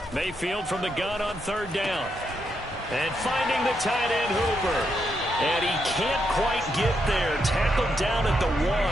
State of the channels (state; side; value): normal; both; correlation 0.80